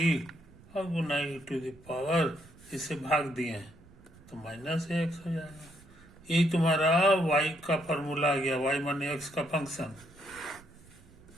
अब गुना ई टू द पावर, इसे भाग दिए हैं तो माइनस एक्स हो जाएगा। यही तुम्हारा y का फॉर्मूला आ गया, y माने x का फंक्शन।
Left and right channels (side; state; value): right; noise; rumble, 23 dB below the sound